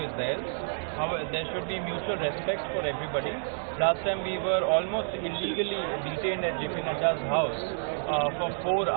theirs. However, there should be mutual respect for everybody. Last time we were almost illegally detained at JP Nadda's house for 4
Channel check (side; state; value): left; silent; digital silence